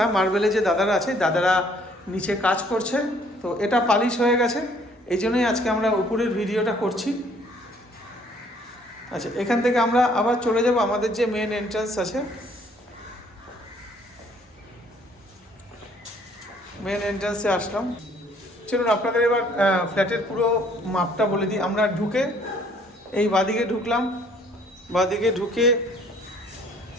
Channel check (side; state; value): both; normal; correlation 0.61